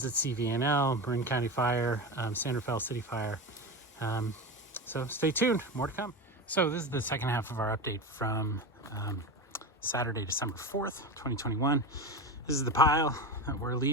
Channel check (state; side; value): normal; both; correlation 0.23